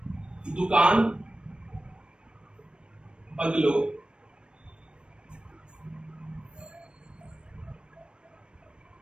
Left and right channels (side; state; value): left; late; 0.054 ms